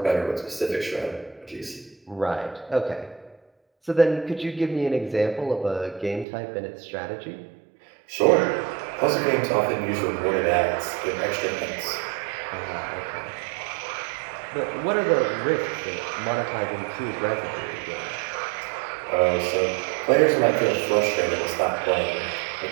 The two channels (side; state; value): left; drops out; at 6.2 s